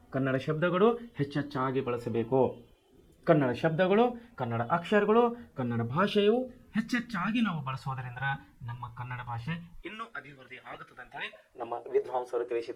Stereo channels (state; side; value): identical; both; correlation 1.00